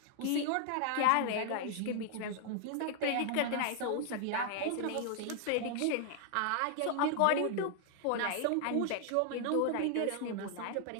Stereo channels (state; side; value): different; both; correlation 0.00